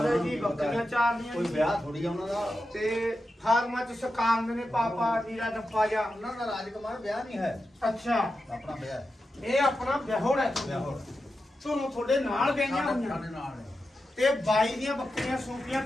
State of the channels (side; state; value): both; normal; correlation 0.90